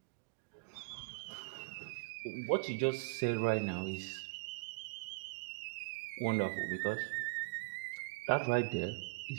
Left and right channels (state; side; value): quieter; left; 29.7 dB